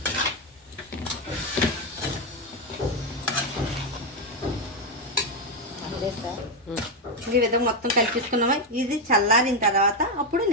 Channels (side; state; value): both; normal; correlation 0.05